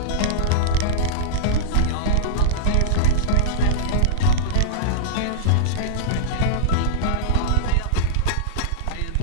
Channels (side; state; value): both; different; correlation -0.02